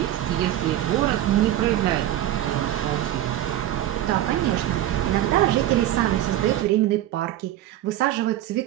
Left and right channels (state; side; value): quieter; left; 13.2 dB